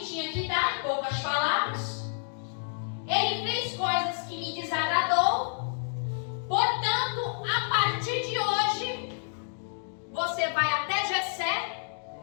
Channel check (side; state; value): right; silent; digital silence